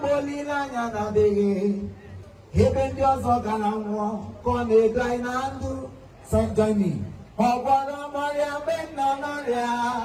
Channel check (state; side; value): identical; both; correlation 1.00